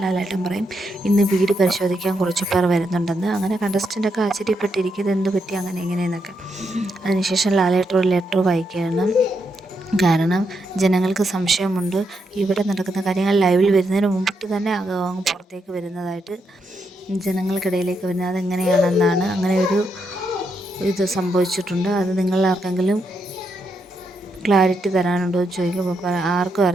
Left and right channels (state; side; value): normal; both; correlation 0.81